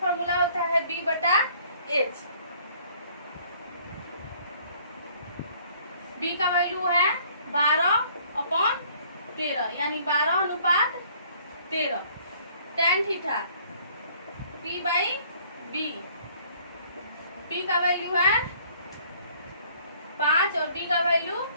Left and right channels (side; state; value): both; inverted; correlation -0.58